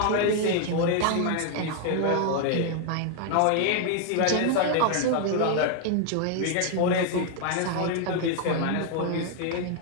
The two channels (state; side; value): different; both; correlation 0.00